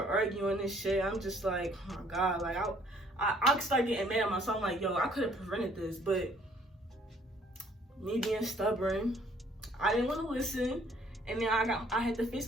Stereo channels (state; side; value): normal; both; correlation 0.60